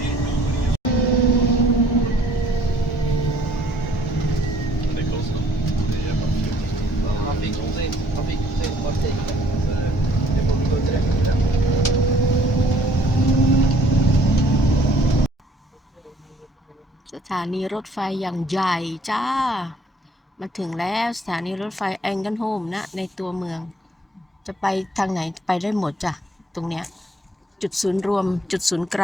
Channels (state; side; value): normal; both; correlation 0.60